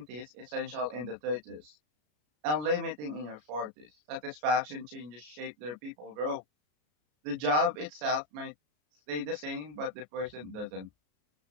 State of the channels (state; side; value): late; left; 33 ms